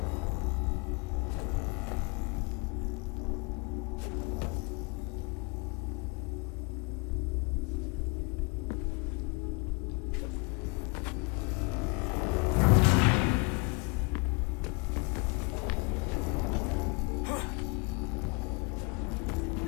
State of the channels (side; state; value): right; quieter; 28.0 dB